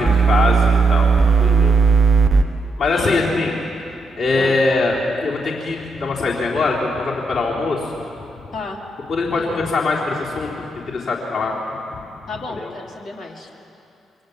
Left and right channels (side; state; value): both; normal; correlation 0.79